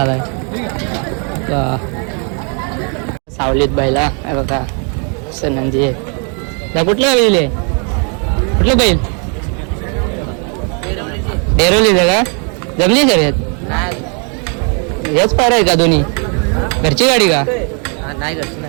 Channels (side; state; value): left; quieter; 38.6 dB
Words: सावलीत बायला बघा. नंदी आहे. त्या कुठल्या बैल आहे? कुठलं बैल? डेरोलीचं का? जमली शर्यत? हेच पायरा आहे का दोन्ही? घरची गाडी का? नाही घरची